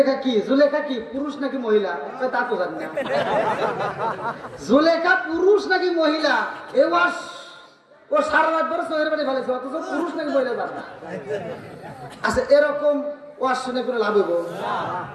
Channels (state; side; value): identical; both; correlation 1.00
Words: কি পুরুষ নাকি মহিলা কই তা তো জানি না জুলেখা পুরুষ নাকি মহিলা এ ওয়াজ ও সারা রাত ধরে চোখের বাড়ি ফেলেছে অথচ পুরুষ নাকি মহিলা জানে না। আচ্ছা এরকম ওয়াজ শুনে কোনো লাভ হইব?